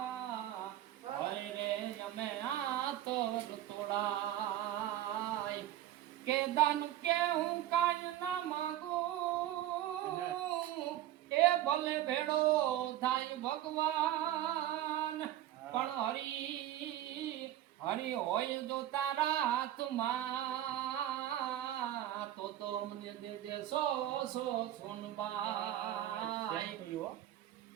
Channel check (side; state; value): left; quieter; 12.9 dB